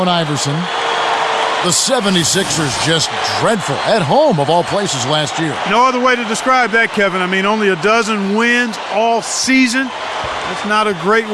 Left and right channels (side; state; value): both; identical; correlation 1.00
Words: Iverson. The 76ers just dreadful at home of all places last year. No other way to describe that, Kevin. I mean, only a dozen wins all season. That's not a great